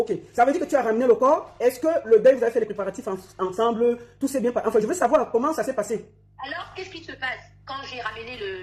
Ça veut dire que tu as ramené le corps. Est-ce que le deuil, vous avez fait les préparatifs ensemble? Tout s'est bien passé? Enfin, je veux savoir comment ça s'est passé. Alors, qu'est-ce qui se passe? Quand j'ai ramené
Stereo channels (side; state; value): both; identical; correlation 1.00